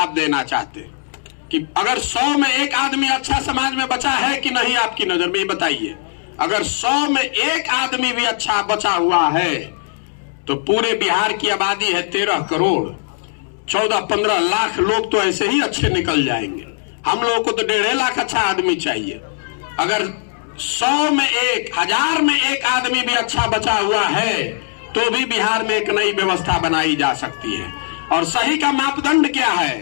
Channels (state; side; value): silent; right; digital silence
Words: देना चाहते कि अगर 100 में एक आदमी अच्छा समाज में बचा है कि नहीं, आपकी नजर में ये बताइए। अगर 100 में एक आदमी भी अच्छा बचा हुआ है तो पूरे बिहार की आबादी है 13 करोड़, 14-15 लाख लोग तो ऐसे ही अच्छे निकल जाएंगे। हम लोगों को तो 1.5 लाख अच्छा आदमी चाहिए। अगर 100 में एक, 1000 में एक आदमी भी अच्छा बचा हुआ है तो भी बिहार में एक नई व्यवस्था बनाई जा सकती है। और सही का मापदंड क्या